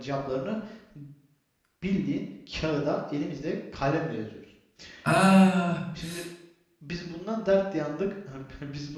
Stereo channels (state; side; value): identical; both; correlation 1.00